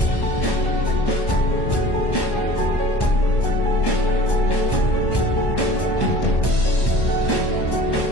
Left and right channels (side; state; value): right; late; 1.1 ms